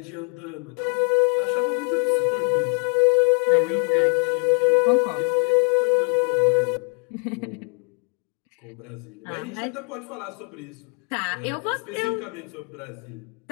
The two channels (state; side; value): quieter; right; 38.5 dB